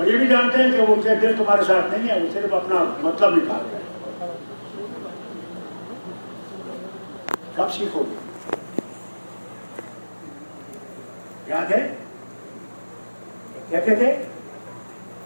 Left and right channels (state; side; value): inverted; both; correlation -1.00